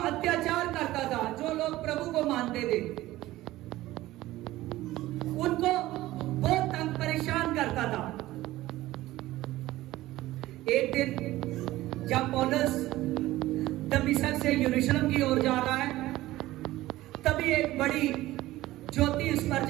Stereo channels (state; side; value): quieter; left; 16.6 dB